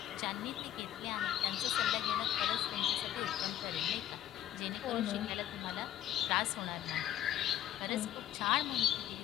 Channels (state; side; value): quieter; right; 11.9 dB